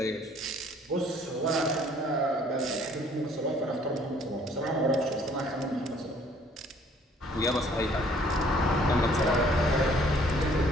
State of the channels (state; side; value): normal; both; correlation 0.59